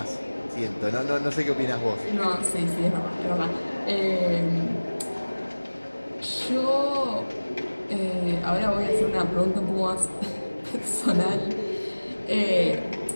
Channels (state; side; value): inverted; both; correlation -1.00